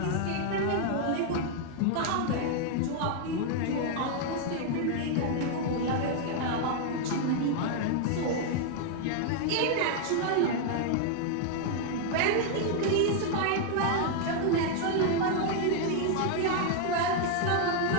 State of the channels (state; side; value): different; both; correlation 0.00